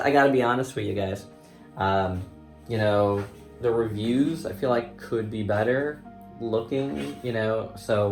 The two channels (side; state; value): both; identical; correlation 1.00